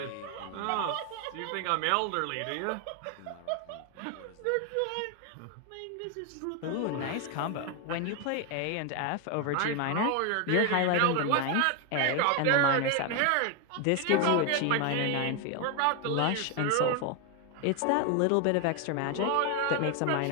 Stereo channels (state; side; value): different; both; correlation 0.01